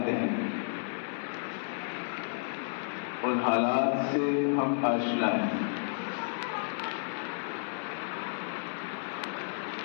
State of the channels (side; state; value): right; silent; 56 dB below the other